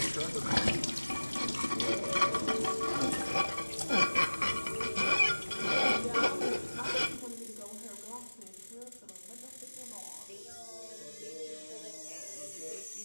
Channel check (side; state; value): both; inverted; correlation -1.00